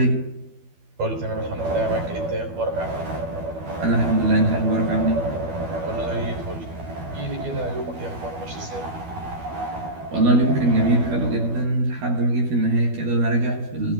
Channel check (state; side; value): late; left; 12 ms